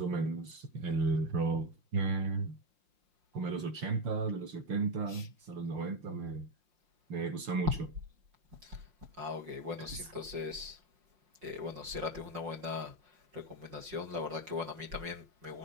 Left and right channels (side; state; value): left; late; 5.7 ms